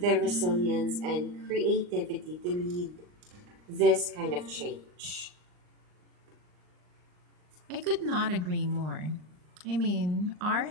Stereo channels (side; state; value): left; late; 39 ms